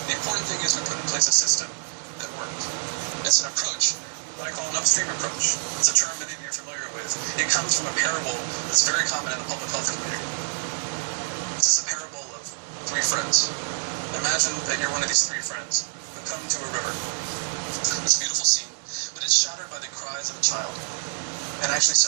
The important thing is we put in place a system that worked. It's an approach that I call an upstream approach. It's a term many of you are familiar with. It comes from a parable that's very common in the public health community. This is a parable of three friends. Imagine that you're one of these three friends who come to a river. It's a beautiful scene, but it's shattered by the cries of a child, and actually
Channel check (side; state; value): left; silent; 61 dB below the other